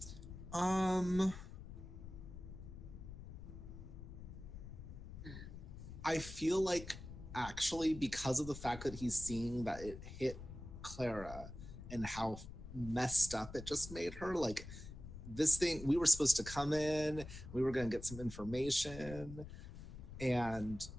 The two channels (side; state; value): left; noise; rumble, 12 dB below the sound